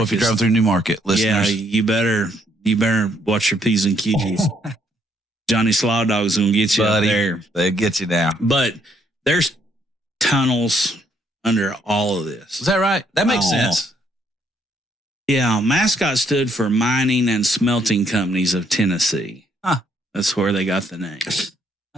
if you're driving through Newmarket, listeners. Yeah, you better watch your P's and Q's. Johnny Slaw Dog's gonna get you up there. They'll get you now. But there's tunnels under all of this. Is that right? That makes sense. Yeah, mascot stood for Mining and Smelting Companies of Tennessee. Huh. That's where they got the name.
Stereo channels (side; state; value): both; normal; correlation 0.70